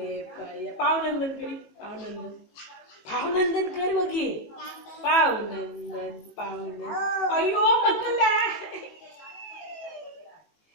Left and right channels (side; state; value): right; late; 18 ms